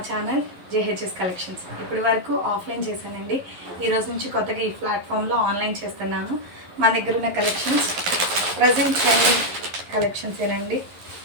channel JHS collections. ఇప్పటి వరకు offline చేశానండి. ఈరోజు నుంచి కొత్తగా ఈ ప్లాట్ఫామ్లో ఆన్లైన్ చేస్తున్నాను. మా దగ్గర ఉన్న కలెక్షన్స్ ప్రజెంట్ ట్రెండింగ్ కలెక్షన్స్ ఏనండి.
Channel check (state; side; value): late; left; 11 ms